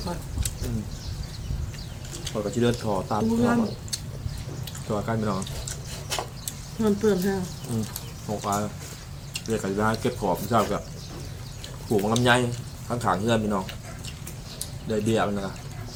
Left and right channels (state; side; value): identical; both; correlation 1.00